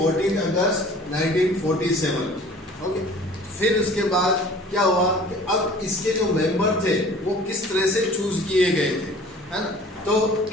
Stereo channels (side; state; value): both; normal; correlation 0.47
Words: अगस्त 1947। ओके, फिर इसके बाद क्या हुआ कि अब इसके जो मेंबर थे वो किस तरह से चूज किए गए थे, है ना। तो